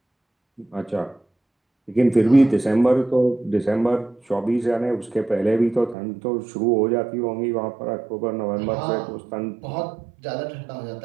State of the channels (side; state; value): left; drops out; at 6.0 s